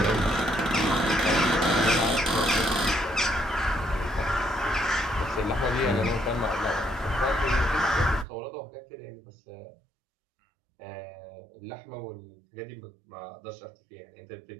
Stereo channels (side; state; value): left; drops out; at 8.2 s